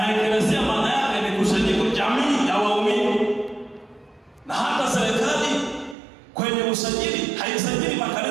eklesia maana yake ni kusanyiko, jamii ya waumini. Na hata serikali kwenye usajili haisajili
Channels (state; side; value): drops out; left; at 6.0 s